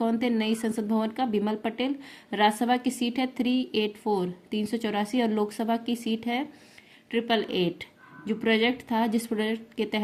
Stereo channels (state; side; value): identical; both; correlation 1.00